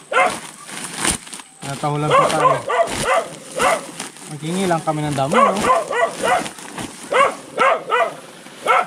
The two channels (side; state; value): both; identical; correlation 1.00